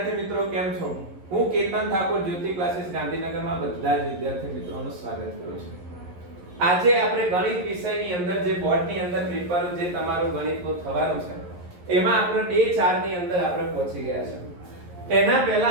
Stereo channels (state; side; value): late; left; 11 ms